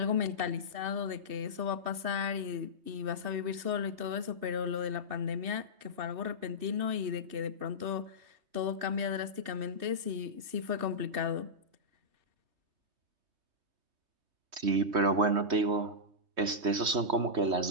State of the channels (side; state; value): left; late; 3.2 ms